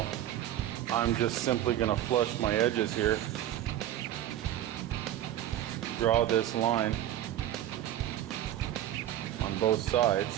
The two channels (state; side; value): quieter; left; 12.3 dB